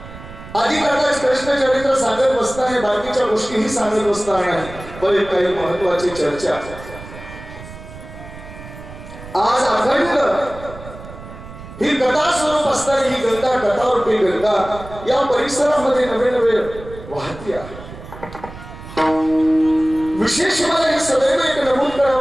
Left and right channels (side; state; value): right; noise; rumble, 15 dB below the sound